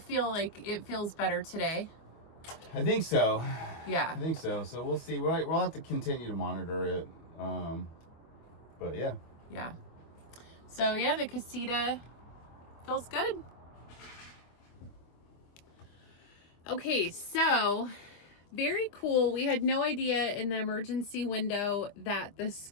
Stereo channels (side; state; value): right; late; 24 ms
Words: like it feels better today? I think so. Yeah. I think so. So we'll see. We'll have to continue to monitor it. But yeah. Yeah. So yeah, the Casita feels good. Okay, so very cool. We had no idea in the emergency window that the